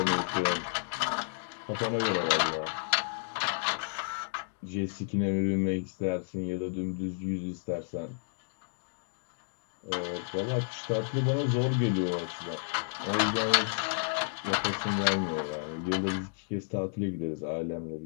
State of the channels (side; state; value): right; silent; digital silence